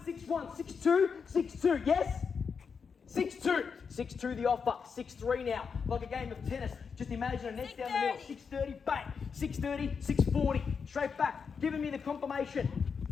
62, yes? 6-2. 6-2 the offer. 6-3 now. Like a game of tennis. Just imagine a net down the middle. 630, bang. 630, 640. Straight back. Giving me the confirmation.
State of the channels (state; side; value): quieter; right; 5.9 dB